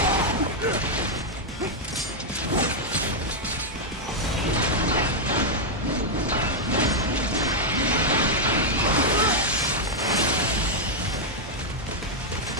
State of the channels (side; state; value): both; normal; correlation -0.02